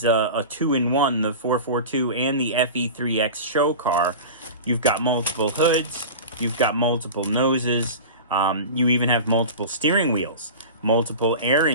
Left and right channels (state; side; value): inverted; both; correlation -0.31